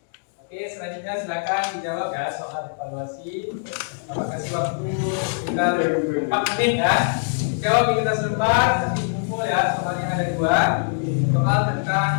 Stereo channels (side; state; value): right; silent; digital silence